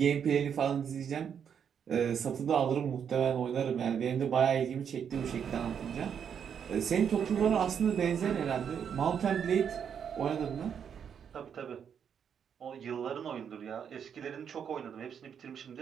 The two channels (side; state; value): left; quieter; 7.8 dB